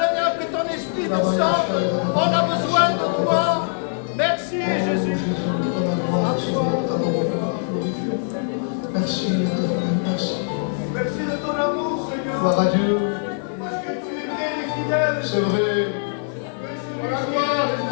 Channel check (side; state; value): right; silent; digital silence